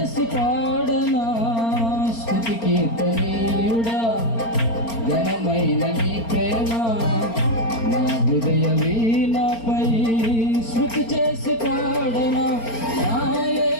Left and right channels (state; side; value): late; right; 4.4 ms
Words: పాడనా స్తుతి కీర్తనీయుడా ఘనమైన నీ ప్రేమ నా హృదయ వీణపై స్తుతి చేసి పాడనా నా